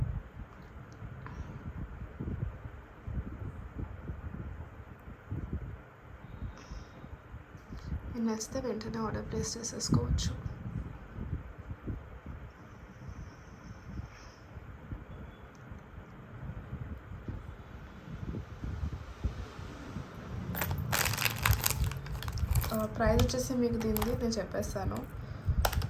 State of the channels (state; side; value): identical; both; correlation 1.00